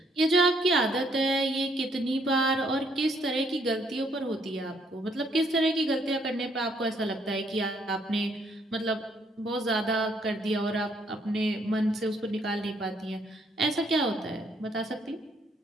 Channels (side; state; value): both; normal; correlation 0.69